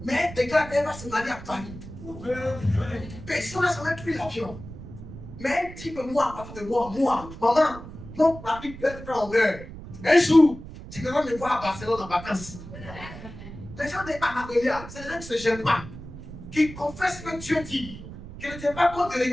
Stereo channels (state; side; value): noise; right; rumble, 13 dB below the sound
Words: Mais des gars, elle va se marier à Paris. Personne n'a jamais pris l'avion. Mais un type, moi, à partir de moi, maman, non, ma vie peut être en heure. Un jour, tu vas me voir à Barcelone en vacances. Les gens des Anadolia, c'est des gens qui ne se gênent pas, qui confessent que Dieu dit, qui ne tiennent pas compte du